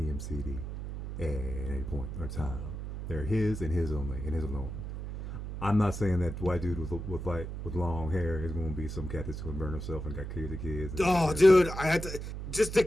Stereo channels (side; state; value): right; noise; hum, 7 dB below the sound